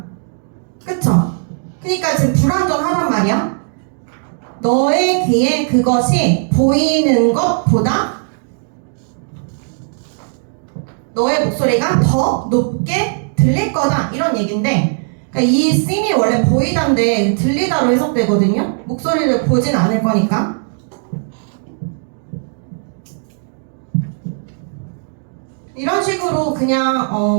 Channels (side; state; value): left; silent; 68 dB below the other